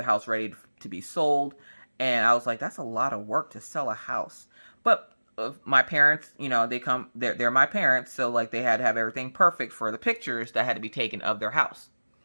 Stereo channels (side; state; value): both; inverted; correlation -1.00